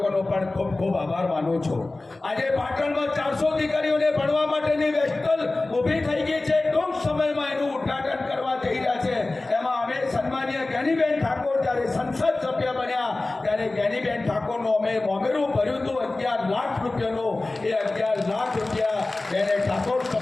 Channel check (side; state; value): right; quieter; 3.1 dB